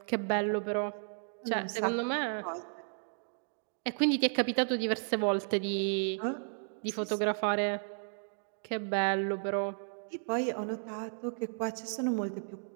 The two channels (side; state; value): left; silent; digital silence